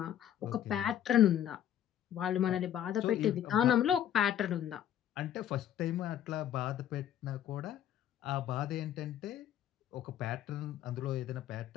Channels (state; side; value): quieter; right; 10.7 dB